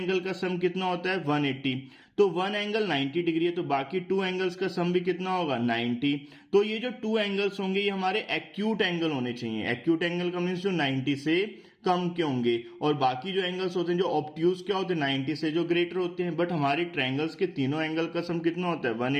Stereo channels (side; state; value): both; identical; correlation 1.00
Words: का सम कितना होता है, 180। तो वन एंगल 90 डिग्री है, तो बाकी 2 एंगल्स का सम भी कितना होगा, 90। तो ये जो 2 एंगल्स होंगे ये हमारे एक्यूट एंगल होने चाहिए। एक्यूट एंगल का मीन्स जो 90 से कम के होंगे, और बाकी जो एंगल्स होते हैं जो ऑब्ट्यूज क्या होते हैं, 90 से जो ग्रेटर होते हैं। बट हमारे ट्रायंगल्स के तीनों एंगल का सम कितना होता है,